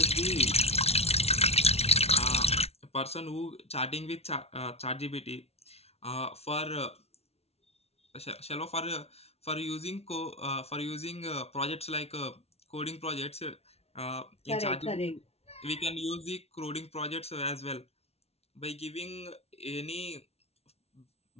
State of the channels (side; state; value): right; late; 0.30 ms